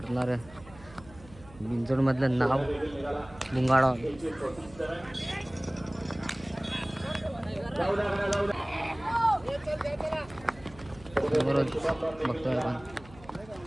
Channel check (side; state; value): right; noise; hum, 21 dB below the sound